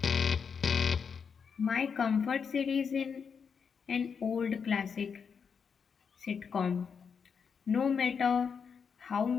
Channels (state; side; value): quieter; right; 6.3 dB